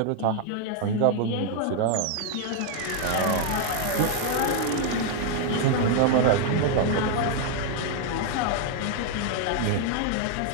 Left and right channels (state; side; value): different; both; correlation 0.01